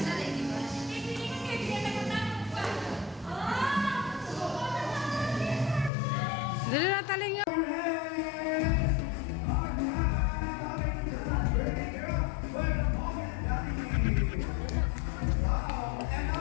Dali na taling yun.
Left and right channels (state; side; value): drops out; right; at 5.9 s